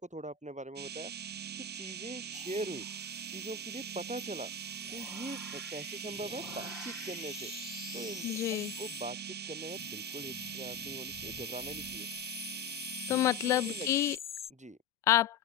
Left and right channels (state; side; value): quieter; right; 4.6 dB